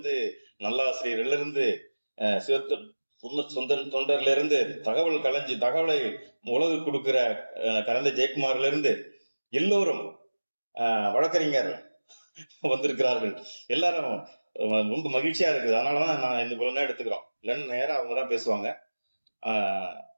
நல்லாசிரியர்ல இருந்து, தொண்டர்ல இருந்து, தகவலை உலகு கொடுக்கிற கலந்த ஜெயக்குமார்ல இருந்து எல்லோரும் வழக்கறிஞர் வந்திருக்கிறார்கள். எல்லாரும் ரொம்ப மகிழ்ச்சியா இருக்குது. அதனாலதான் நான் இந்த இவ்வளவு நேரம் எடுத்துக்கிறோம். இல்லைன்னு நேரம் அவங்கதான் பேசுவாங்க.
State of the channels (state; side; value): inverted; both; correlation -1.00